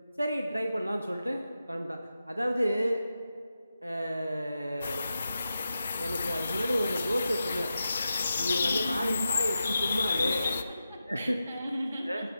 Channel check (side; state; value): both; inverted; correlation -0.90